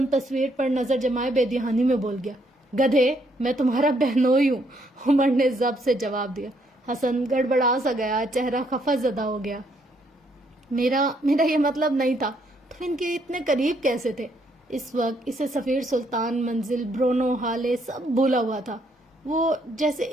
تصویر پر نظر جمائے بے دہانی میں بول گیا۔ گدھے، میں تمہارا بہنوئی ہوں، عمر نے ضبط سے جواب دیا۔ حسن گڑبڑا سا گیا، چہرہ خفا زدہ ہو گیا۔ میرا یہ مطلب نہیں تھا۔ تم ان کے اتنے قریب کیسے تھے؟ اس وقت اسے سفیر، سلطان، منزل، برونو، حالے سب بھولا ہوا تھا۔ وہ جیسے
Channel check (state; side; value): normal; both; correlation 0.71